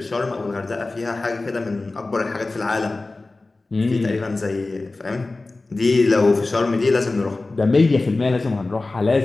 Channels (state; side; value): quieter; right; 3.3 dB